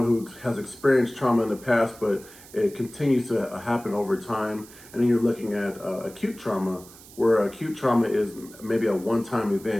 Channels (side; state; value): right; noise; hiss, 20 dB below the sound